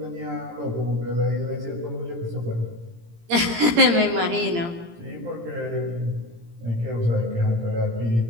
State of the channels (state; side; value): late; left; 17 ms